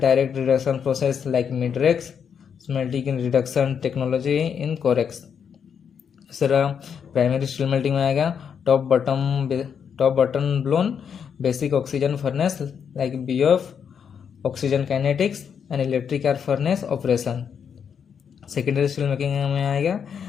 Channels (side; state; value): right; quieter; 7.3 dB